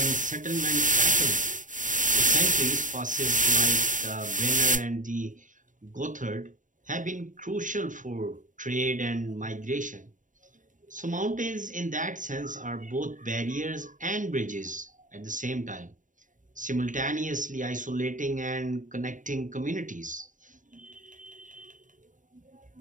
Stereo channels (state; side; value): late; left; 0.37 ms